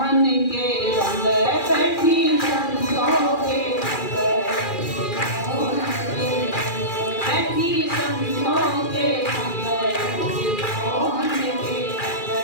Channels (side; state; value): right; late; 2.4 ms